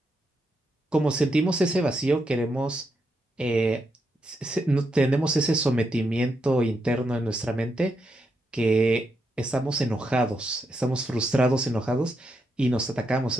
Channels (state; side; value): normal; both; correlation 0.82